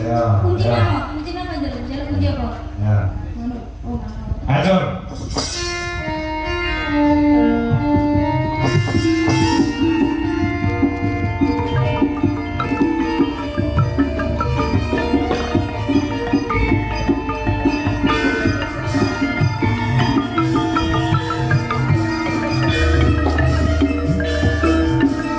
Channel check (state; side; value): identical; both; correlation 1.00